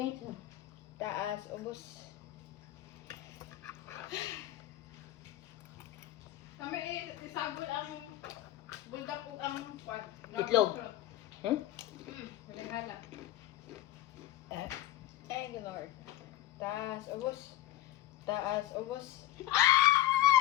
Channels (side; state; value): right; quieter; 14.4 dB